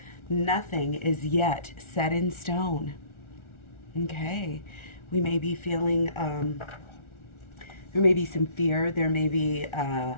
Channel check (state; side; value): late; right; 1.4 ms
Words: Nothing is yet set in stone. Okay. We may be feeling, there may be some fear. There may be a